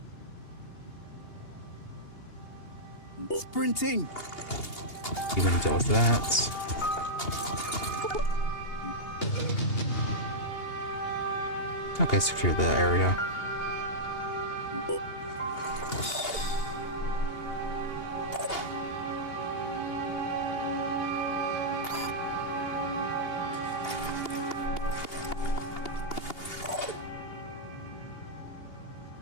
Sprinting. You're gonna deal with that. Okay, secure the area.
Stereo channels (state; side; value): late; right; 2.8 ms